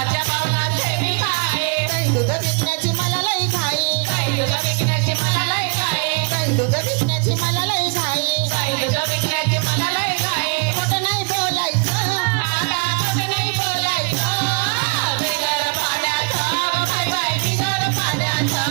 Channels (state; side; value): quieter; left; 37.6 dB